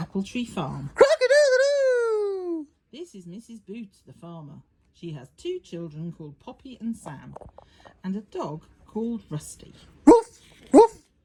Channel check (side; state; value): both; identical; correlation 1.00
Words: Tree Farm. Crock-a-doodle-doo! This is Mrs. Boots, the farmer. She has 2 children called Poppy and Sam, and a dog called Rusty. Roof, roof,